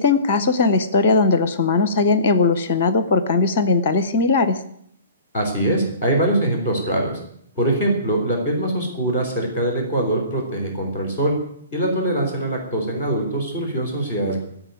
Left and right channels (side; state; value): both; inverted; correlation -0.42